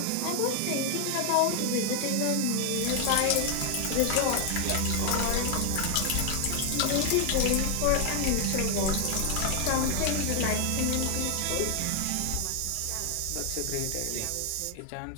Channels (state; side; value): different; both; correlation 0.01